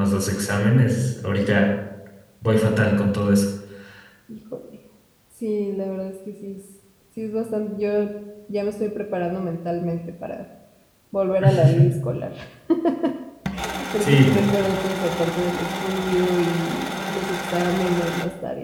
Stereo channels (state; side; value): identical; both; correlation 1.00